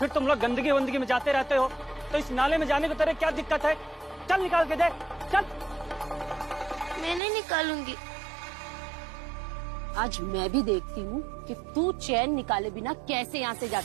तुम लोग गंदगी वंदगी में जाते रहते हो, तो इस नाले में जाने को तेरे क्या दिक्कत है? चल निकाल के दे, चल। मैं नहीं निकालूंगी। आज मैं भी देखती हूँ कि तू चैन निकाले बिना कैसे यहाँ से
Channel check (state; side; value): drops out; left; at 7.2 s